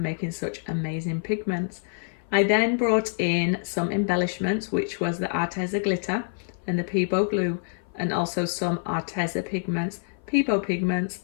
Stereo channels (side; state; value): right; silent; 56 dB below the other